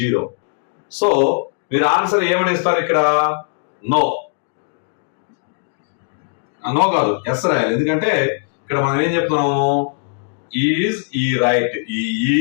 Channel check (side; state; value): right; silent; 58 dB below the other